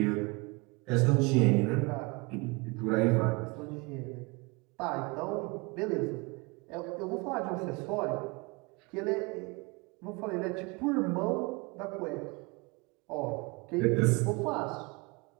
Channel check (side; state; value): left; quieter; 27.1 dB